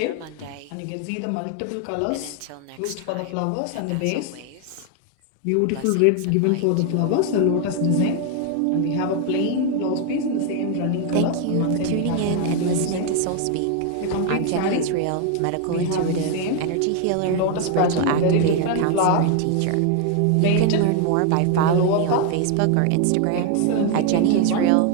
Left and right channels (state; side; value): different; both; correlation 0.01